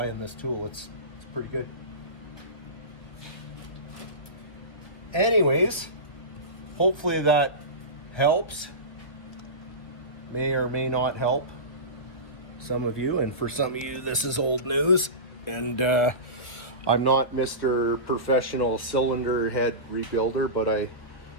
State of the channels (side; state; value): right; late; 1.7 ms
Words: this tool, it's pretty good. Anyways, hopefully that helps. May or may not help some of you, and for some of you this is old news. And I'm not Mr. Professional cylinder head rebuilder, but